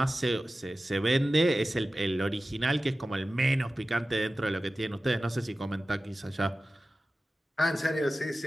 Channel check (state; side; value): normal; both; correlation 0.95